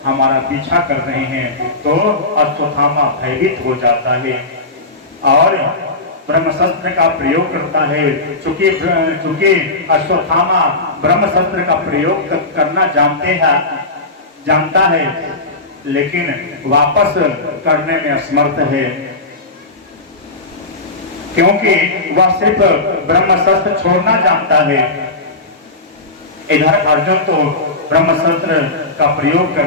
हमारा पीछा कर रहे हैं, तो अश्वत्थामा भयभीत हो जाता है और ब्रह्मशस्त्र का प्रयोग करता है। चूंकि अश्वत्थामा ब्रह्मशस्त्र का प्रयोग करना जानता है, लेकिन वापस करने में असमर्थ है, क्योंकि वह सिर्फ ब्रह्मशस्त्र छोड़ना जानता है। इधर अर्जुन तो ब्रह्मशस्त्र का प्रयोग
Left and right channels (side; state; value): right; quieter; 3.1 dB